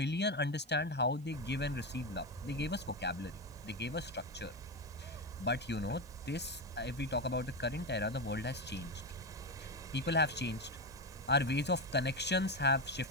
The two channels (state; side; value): normal; both; correlation 0.13